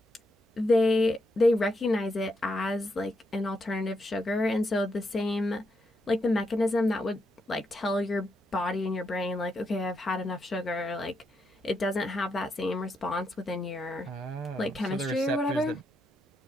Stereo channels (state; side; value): normal; both; correlation 0.81